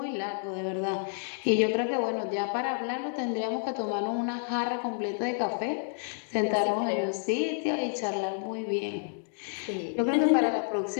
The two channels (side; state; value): right; silent; digital silence